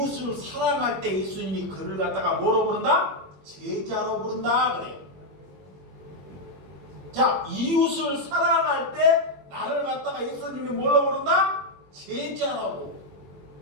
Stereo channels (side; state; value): left; late; 21 ms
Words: 사랑할 때 예수님이 그를 갖다가 뭐로 부른다? 제자로 부른다 그래요. 자, 이웃을 사랑할 때 나를 갖다가 예수님이 뭘로 부른다? 제자라고.